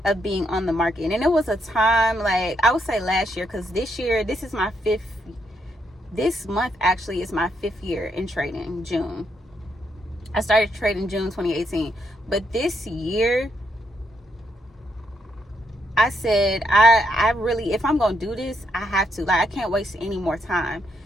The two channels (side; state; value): both; normal; correlation 0.77